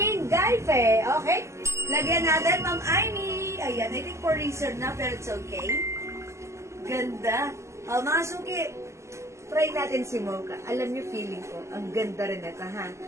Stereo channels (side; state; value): left; late; 0.13 ms